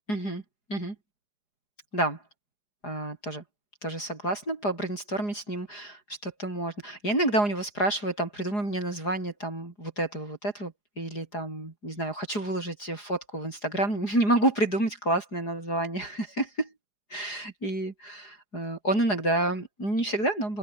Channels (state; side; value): late; right; 4.8 ms